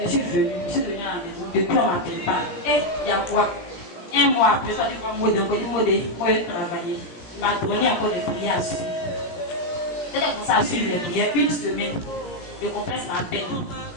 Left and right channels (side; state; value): right; late; 17 ms